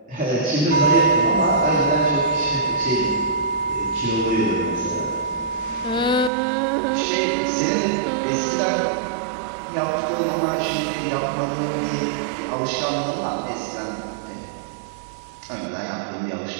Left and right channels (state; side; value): drops out; left; at 6.3 s